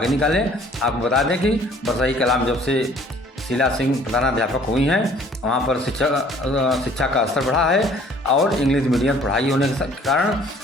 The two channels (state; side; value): normal; both; correlation 0.55